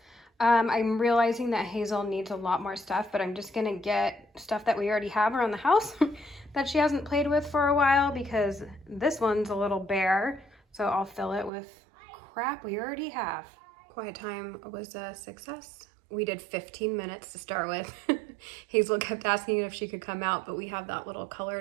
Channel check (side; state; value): left; drops out; at 11.5 s